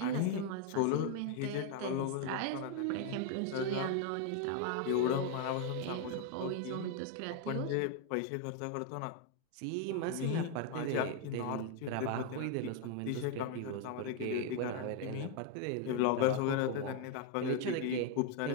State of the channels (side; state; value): both; different; correlation 0.01